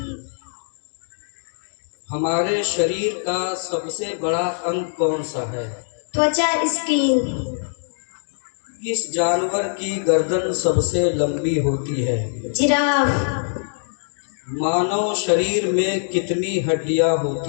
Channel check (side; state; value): right; silent; digital silence